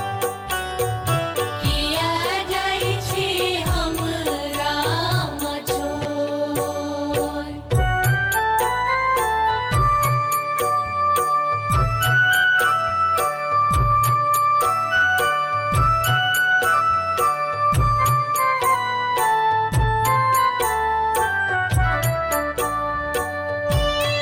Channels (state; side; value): identical; both; correlation 1.00